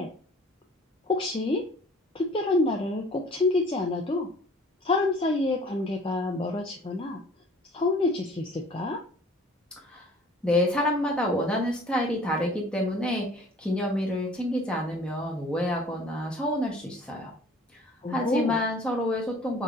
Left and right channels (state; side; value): normal; both; correlation 0.50